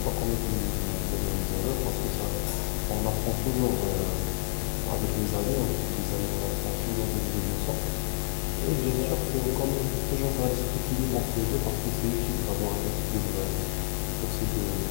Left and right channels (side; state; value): right; silent; digital silence